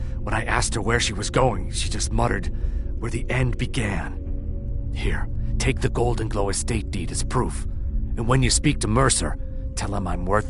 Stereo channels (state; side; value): identical; both; correlation 1.00